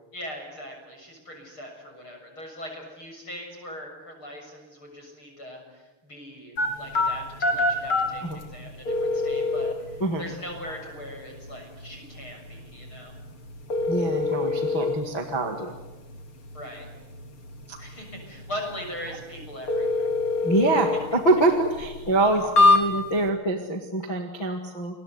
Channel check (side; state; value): right; late; 6.6 ms